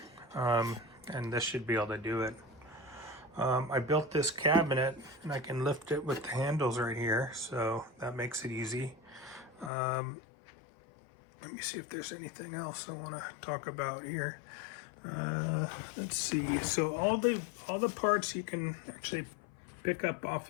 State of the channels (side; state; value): right; drops out; at 9.7 s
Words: and this should be able to do it. I built this cabinet and I can lift it with the handles right here, so that makes it easy. Let me see if there's anything else I want to talk about here. Let's see. So all the parts you can actually pick up